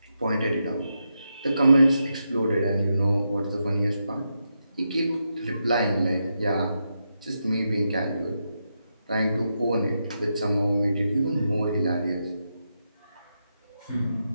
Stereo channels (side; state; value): both; inverted; correlation -0.85